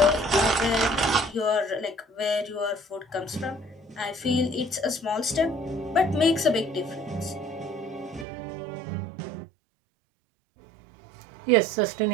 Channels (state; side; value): drops out; left; at 8.2 s